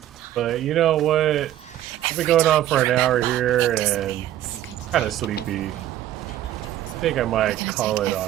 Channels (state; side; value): quieter; left; 12.8 dB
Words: But you know what? I've been going on for an hour here and kind of sleepy. I think I might call it